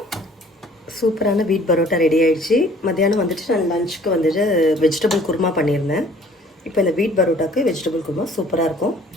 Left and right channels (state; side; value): normal; both; correlation 0.54